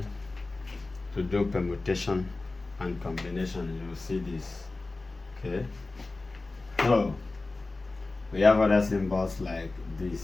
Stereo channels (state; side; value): quieter; right; 3.3 dB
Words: to do permutation and combination, you will see this. Okay. So we have other symbols like